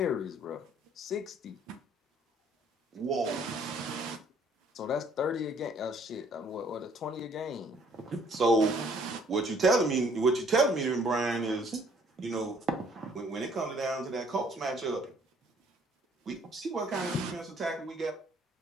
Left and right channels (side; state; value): both; normal; correlation 0.61